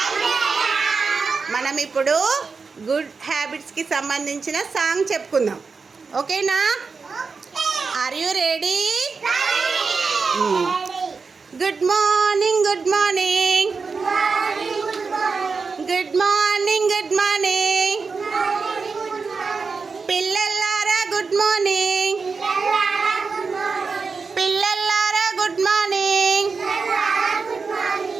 మనం ఇప్పుడు గుడ్ హ్యాబిట్స్కి సంబంధించిన సాంగ్ చెప్పుకుందాం. ఓకేనా? Are you ready? Good morning, good morning, good morning, good morning పిల్లలారా, గుడ్ మార్నింగ్, పిల్లలారా గుడ్ మార్నింగ్.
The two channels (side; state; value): left; quieter; 4.8 dB